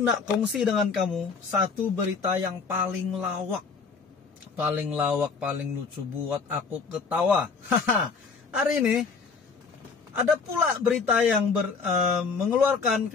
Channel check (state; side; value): quieter; right; 4.9 dB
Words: kongsi dengan kamu satu berita yang paling lawak, paling lucu buat aku ketawa. Hari ini ada pula berita yang mengeluarkan